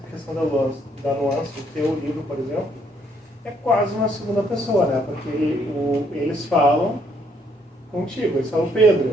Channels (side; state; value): both; normal; correlation 0.69